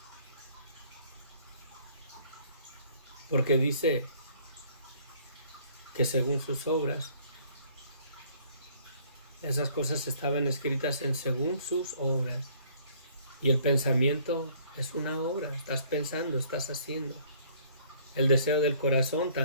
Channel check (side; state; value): both; inverted; correlation -0.59